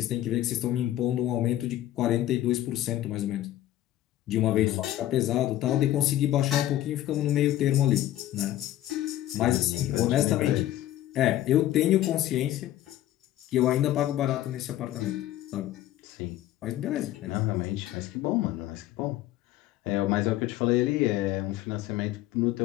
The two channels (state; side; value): quieter; right; 13.7 dB